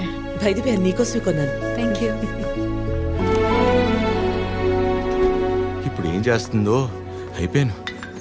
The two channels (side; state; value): both; identical; correlation 1.00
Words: బయట పేరు నీకోసమే కొన్నాను. Thank you. ఇప్పుడు ఏం చేస్తుందో? అయిపోయాను.